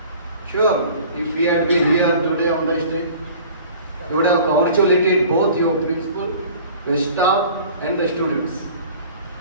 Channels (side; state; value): both; inverted; correlation -0.46